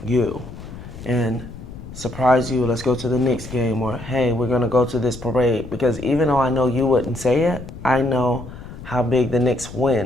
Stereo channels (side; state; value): left; noise; rumble, 13 dB below the sound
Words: you and surprise you. Let's go to the Knicks game, or hey, we're going to go to this parade. Because even though I know you wouldn't say it, I know how big the Knicks